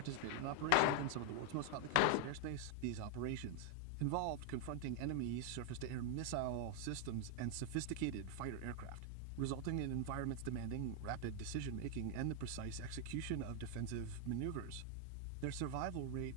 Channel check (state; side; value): different; both; correlation 0.00